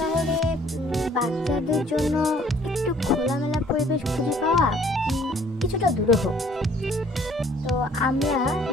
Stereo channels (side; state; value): both; normal; correlation 0.58